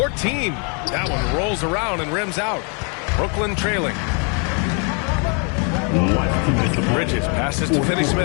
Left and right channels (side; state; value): right; quieter; 36.8 dB